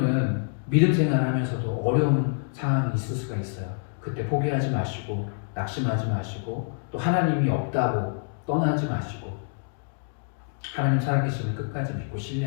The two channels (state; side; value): silent; right; digital silence